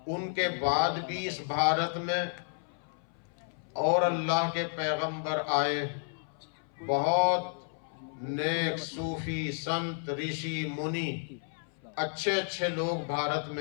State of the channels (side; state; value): right; silent; 56 dB below the other